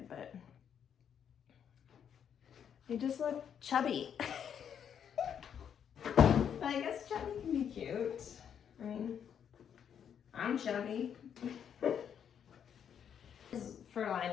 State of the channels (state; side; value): quieter; right; 8.3 dB